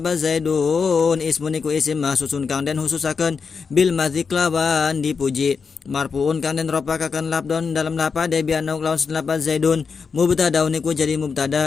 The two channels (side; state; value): right; quieter; 5.4 dB